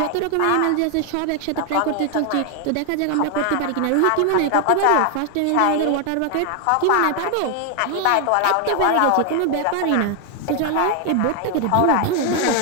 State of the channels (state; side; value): different; both; correlation 0.01